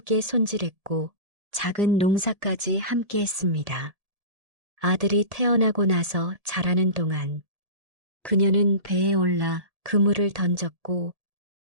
손질했고 작은 농사까지 함께 했습니다. 아들이 태어나고 나서 자라는 동안 그녀는 배에 올라 그물을 던졌고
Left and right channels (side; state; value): left; late; 1.7 ms